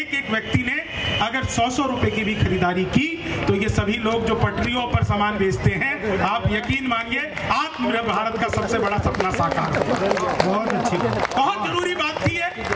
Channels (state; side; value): identical; both; correlation 1.00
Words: एक व्यक्ति ने अगर 100-100 रुपए की भी खरीदारी की तो ये सभी लोग जो पटरियों पर सामान बेचते हैं, आप यकीन मानिए आत्मनिर्भर भारत का सबसे बड़ा सपना साकार है। बहुत अच्छी, बहुत जरूरी बात थी है।